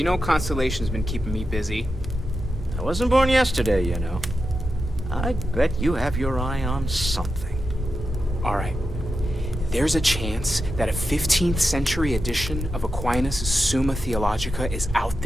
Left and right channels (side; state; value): both; normal; correlation 0.89